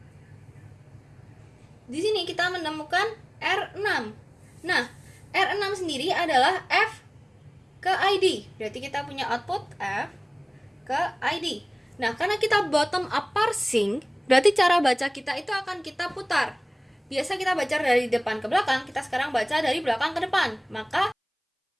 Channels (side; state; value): both; identical; correlation 1.00